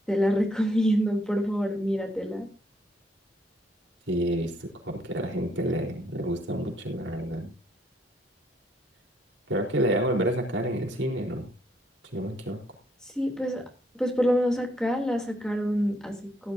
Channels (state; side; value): normal; both; correlation 0.70